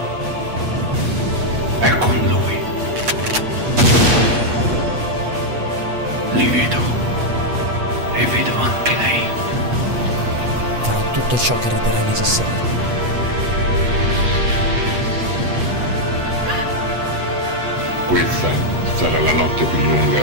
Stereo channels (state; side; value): late; left; 8.3 ms